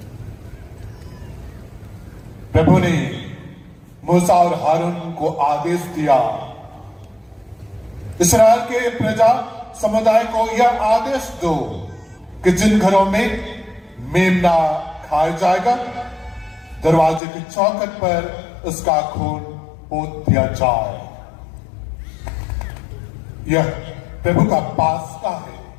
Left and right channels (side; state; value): right; drops out; at 17.2 s